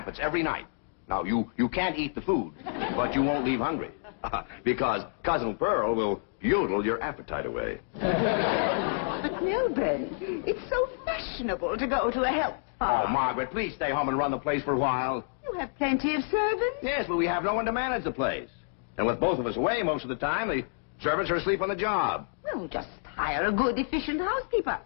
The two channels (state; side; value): silent; right; digital silence